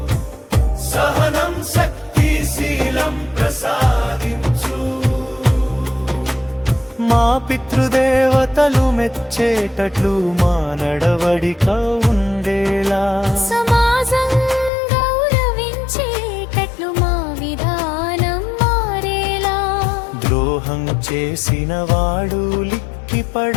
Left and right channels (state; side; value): drops out; right; at 14.7 s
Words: సహనం శక్తి శీలం ప్రసాదించు. మా పితృదేవతలు మెచ్చేటట్లు మా నడవడిక ఉండేలా, సమాజం గౌరవించేటట్లు మా విధానం మారేలా. ద్రోహం చేసిన వాడు